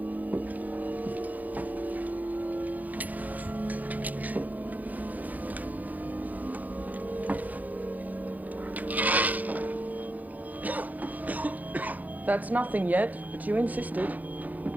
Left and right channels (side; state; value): left; late; 0.080 ms